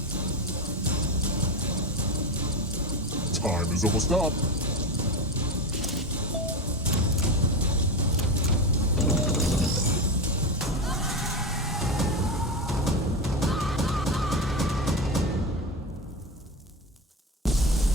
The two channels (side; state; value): both; normal; correlation 0.19